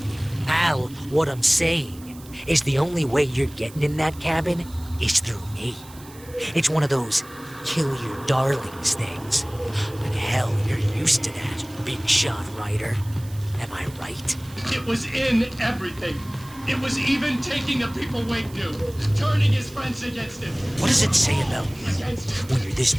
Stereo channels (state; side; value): noise; right; hiss, 21 dB below the sound